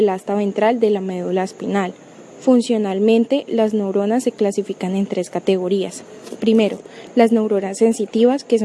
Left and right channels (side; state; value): both; identical; correlation 1.00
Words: asta ventral de la médula espinal. Funcionalmente, las neuronas se clasifican en 3 categorías. Primero, las neuronas sensitivas, que